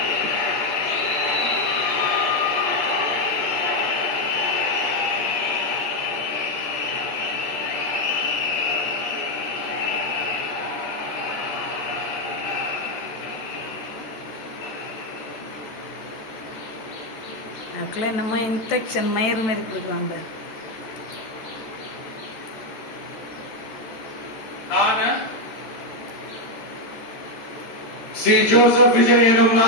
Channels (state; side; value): late; right; 14 ms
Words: அதுக்குள்ள என்னமோ இன்ஃபெக்ஷன் மயிறு மாரி கொடுக்குறான் பாரு. சி ஜோசப் விஜய் எனும்